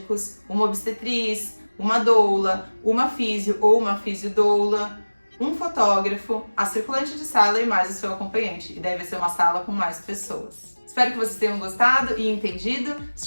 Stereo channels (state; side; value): inverted; both; correlation -1.00